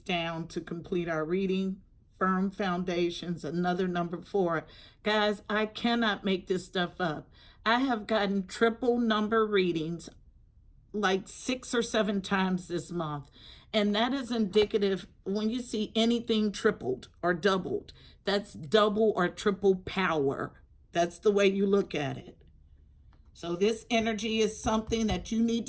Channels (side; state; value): both; identical; correlation 1.00